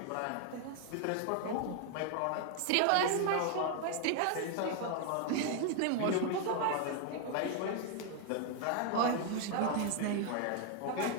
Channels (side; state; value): both; different; correlation 0.00